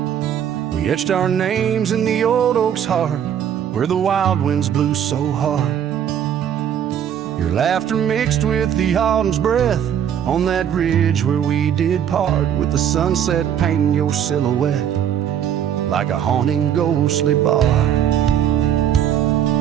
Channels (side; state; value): left; quieter; 9.4 dB